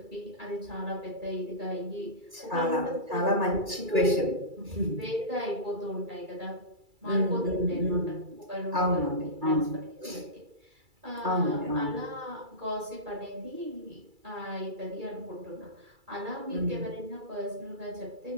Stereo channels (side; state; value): left; late; 2.3 ms